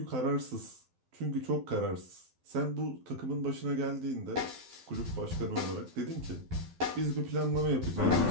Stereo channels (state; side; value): late; left; 12 ms